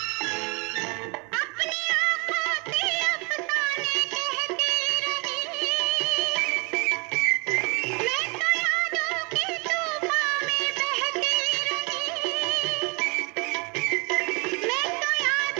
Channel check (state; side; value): quieter; left; 30.6 dB